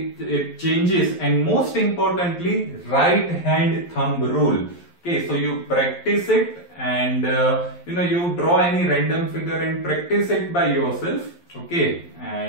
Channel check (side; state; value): right; late; 11 ms